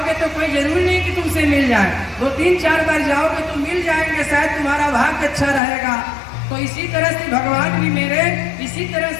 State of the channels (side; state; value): right; drops out; at 5.6 s